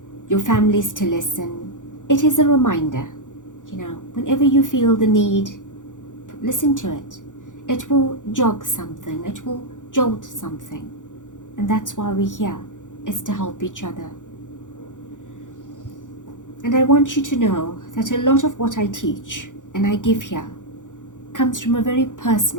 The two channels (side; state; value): right; late; 0.87 ms